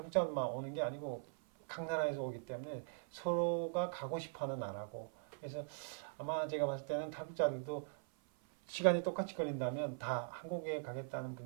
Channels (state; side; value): silent; left; 50 dB below the other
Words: 오는 게 아니고 각 나라에서 오기 때문에 서로가 가고 싶어하는 나라고. 그래서 아마 제가 봤을 때는 탈북자들도 시간이 똑같이 걸린다면 다 한국에